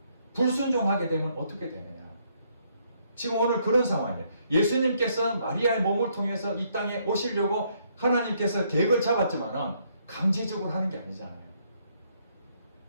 불순종하게 되면 어떻게 되느냐. 지금 오늘 그런 상황이에요. 예수님께서 마리아의 몸을 통해서 이 땅에 오시려고 하나님께서 계획을 잡았지만 강제적으로 하는 게 아니잖아요.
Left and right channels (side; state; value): both; inverted; correlation -0.71